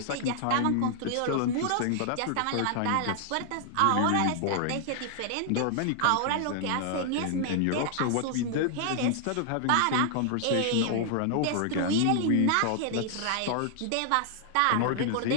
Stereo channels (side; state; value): both; different; correlation 0.00